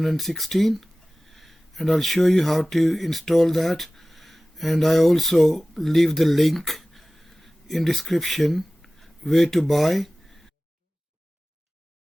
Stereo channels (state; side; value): normal; both; correlation 0.97